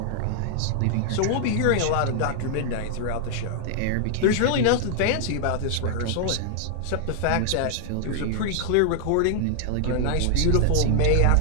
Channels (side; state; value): both; different; correlation -0.01